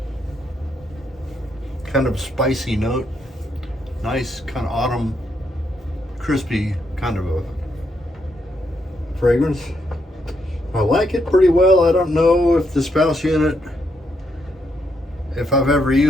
Kind of spicy note, nice kind of autumn, crispy kind of a fragrance. I like it pretty well. I don't know if the spouse unit, if I've ever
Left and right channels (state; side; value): normal; both; correlation 0.77